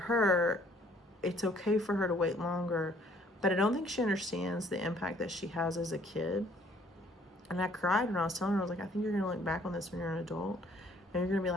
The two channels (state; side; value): normal; both; correlation 0.60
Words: it's okay for her to wait longer, but I don't think she understands the impact that she has as a kid. And I cried when I was telling her, I was like, I think you're going to look back on this when you're an adult, and you're going to be